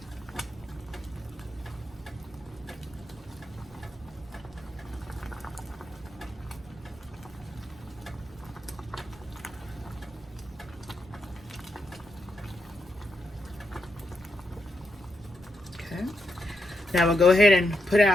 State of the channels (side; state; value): both; normal; correlation 0.83